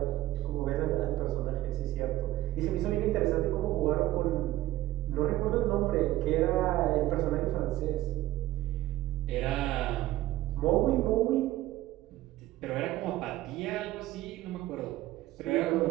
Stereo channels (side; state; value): left; quieter; 15.8 dB